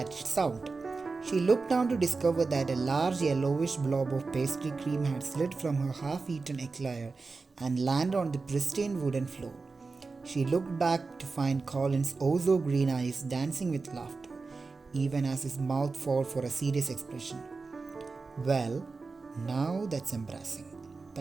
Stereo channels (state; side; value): quieter; left; 4.1 dB